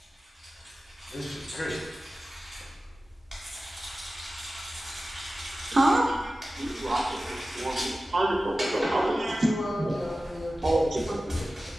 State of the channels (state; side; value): normal; both; correlation 0.95